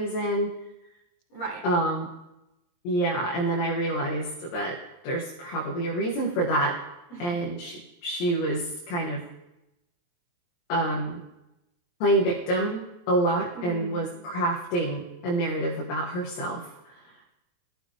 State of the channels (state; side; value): late; right; 23 ms